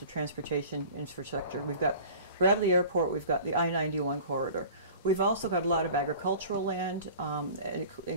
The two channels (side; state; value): both; inverted; correlation -0.42